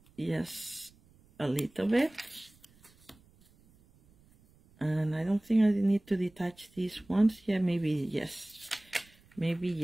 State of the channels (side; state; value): right; noise; rumble, 29 dB below the sound